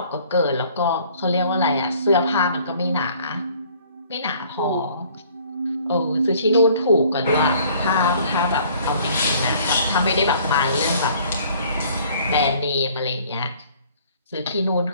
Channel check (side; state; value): both; inverted; correlation -0.56